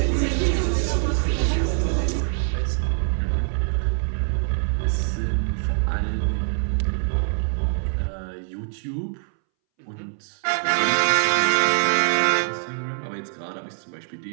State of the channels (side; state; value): left; silent; 63 dB below the other